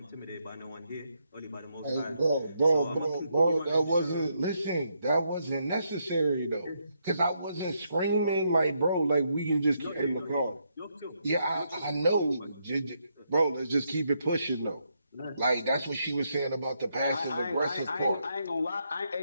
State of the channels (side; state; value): both; inverted; correlation -0.78